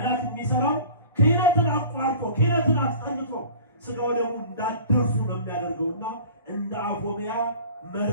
የሚሰራው ክህነትን አቋርጦ ክህነትን አስጠልቶ ስጋ ወደሙ እንዳደርሱ ነው የሚያደርገውና እንደ አፎምያ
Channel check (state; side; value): inverted; both; correlation -0.43